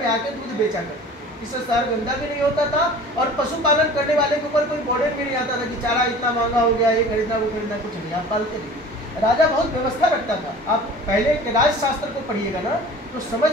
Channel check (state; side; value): normal; both; correlation 0.43